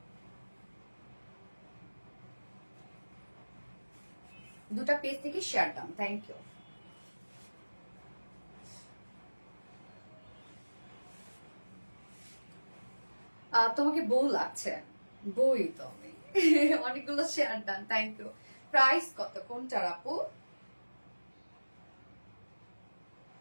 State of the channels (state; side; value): inverted; both; correlation -1.00